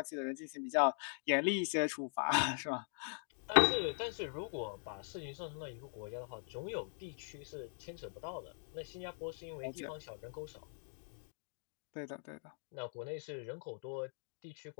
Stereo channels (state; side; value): silent; right; digital silence